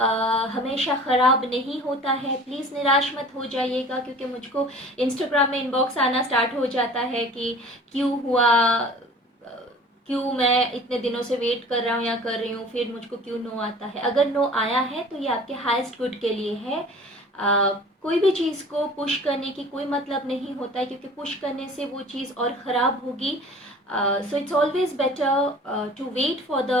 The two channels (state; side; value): normal; both; correlation 0.45